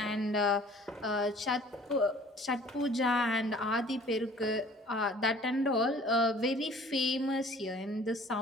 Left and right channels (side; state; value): both; normal; correlation 0.51